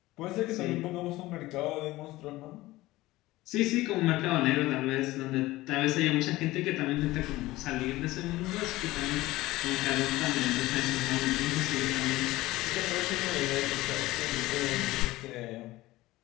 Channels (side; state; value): right; quieter; 18.2 dB